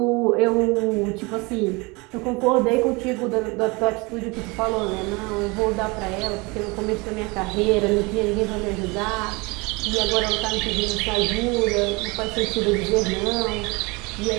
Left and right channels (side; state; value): left; quieter; 26.5 dB